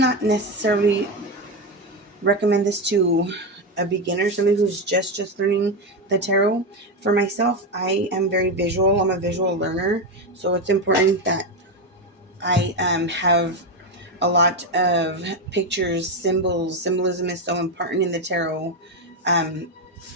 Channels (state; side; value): normal; both; correlation 0.11